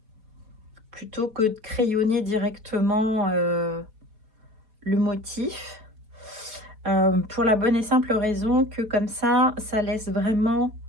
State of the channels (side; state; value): left; late; 4.7 ms